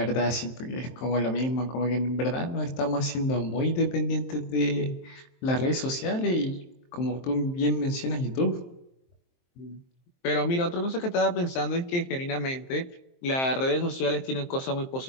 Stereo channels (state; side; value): late; right; 23 ms